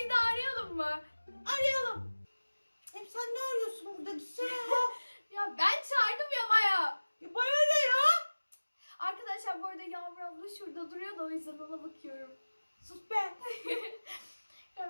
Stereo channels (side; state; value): both; inverted; correlation -1.00